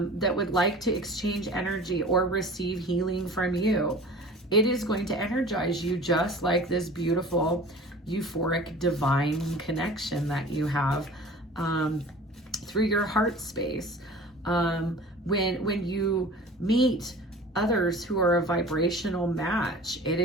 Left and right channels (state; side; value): normal; both; correlation 0.41